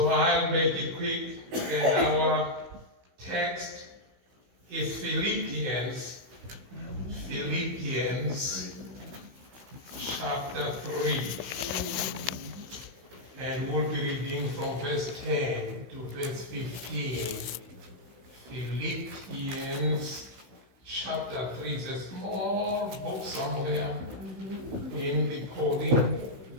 I'll make it quick, and our text is Philippians chapter 3. And we'll be reading from verse 10 to verse 15. Philippians chapter 3 is a small book somewhere in the Pauline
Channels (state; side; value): late; left; 16 ms